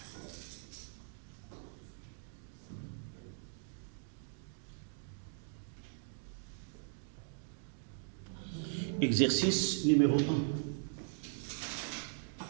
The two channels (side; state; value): left; silent; digital silence